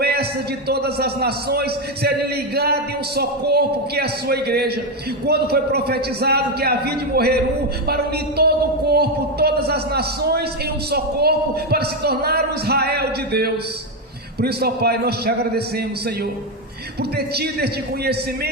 de todas as nações serem ligadas em um só corpo, que é a Sua igreja, quando foi profetizado que havia de morrer um para unir todo o corpo, todas as nações em um só corpo, para se tornar o Israel de Deus. Por isso, ó Pai, nós Te agradecemos, Senhor, por ter tido este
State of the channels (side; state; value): both; normal; correlation 0.08